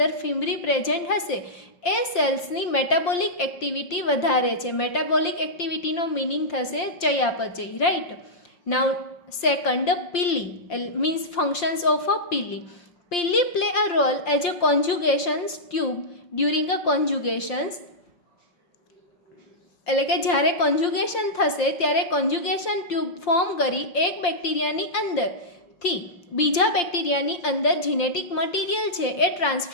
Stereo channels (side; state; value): right; late; 5.7 ms